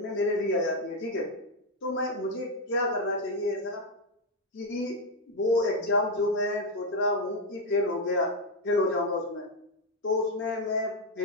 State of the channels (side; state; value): both; normal; correlation 0.04